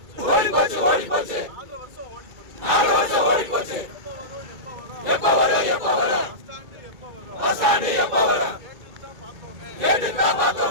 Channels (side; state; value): left; late; 2.3 ms